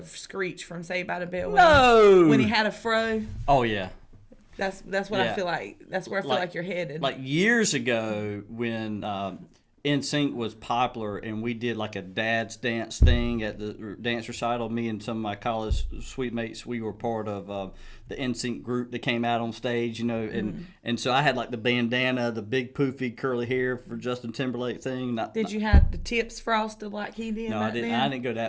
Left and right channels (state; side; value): identical; both; correlation 1.00